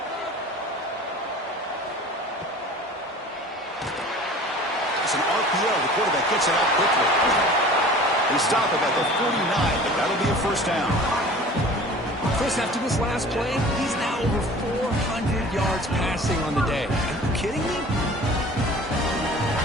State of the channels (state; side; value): normal; both; correlation 0.43